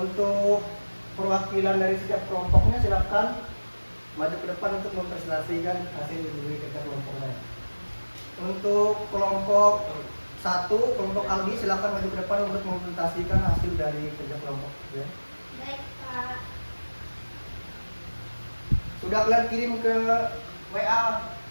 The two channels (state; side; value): inverted; both; correlation -1.00